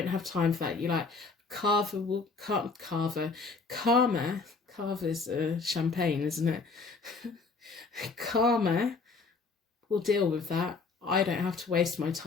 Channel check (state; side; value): quieter; right; 4.4 dB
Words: have time for that. You're like, Karma's champagne, isn't it? Karma will deal with that. I don't have to waste my